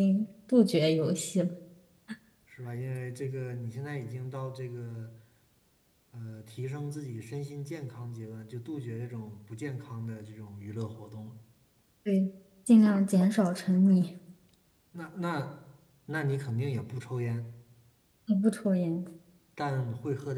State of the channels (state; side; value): identical; both; correlation 1.00